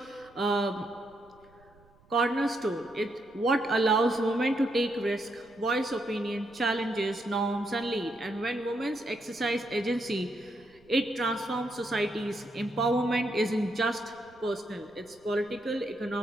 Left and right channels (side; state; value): right; noise; rumble, 29 dB below the sound